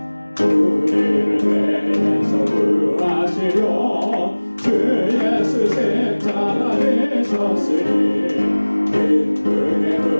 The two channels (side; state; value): both; inverted; correlation -1.00